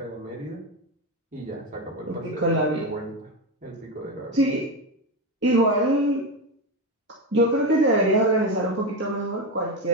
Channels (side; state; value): both; normal; correlation 0.14